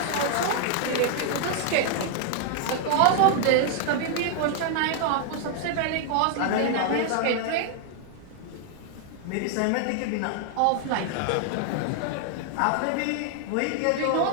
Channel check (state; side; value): different; both; correlation 0.00